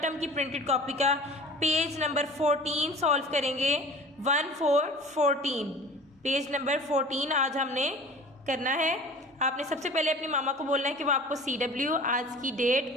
टर्म की प्रिंटेड कॉपी का पेज नंबर 14 सॉल्व करेंगे। 14 पेज नंबर 14 आज हमने करना है। आपने सबसे पहले अपनी मामा को बोलना है कि वो आपको CW आज की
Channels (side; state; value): both; normal; correlation 0.43